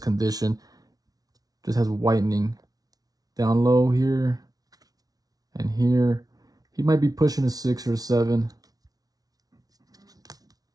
Just has whitening down low here and here. He might be pushing a 6 or a 7.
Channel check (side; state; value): left; late; 0.18 ms